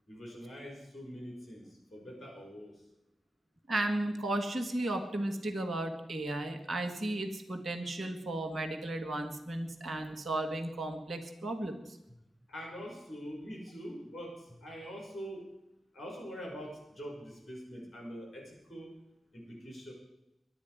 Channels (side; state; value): both; normal; correlation 0.87